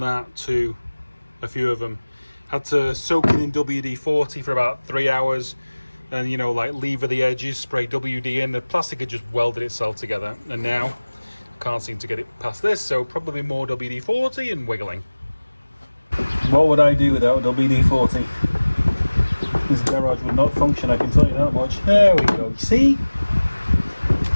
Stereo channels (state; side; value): inverted; both; correlation -1.00